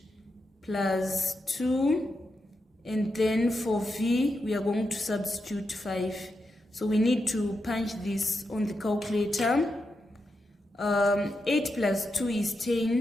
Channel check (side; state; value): both; normal; correlation 0.86